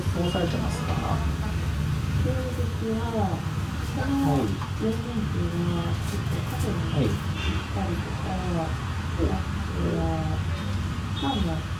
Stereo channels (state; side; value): identical; both; correlation 1.00